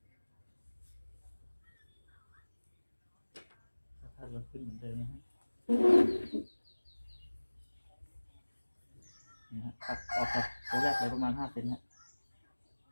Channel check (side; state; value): both; inverted; correlation -1.00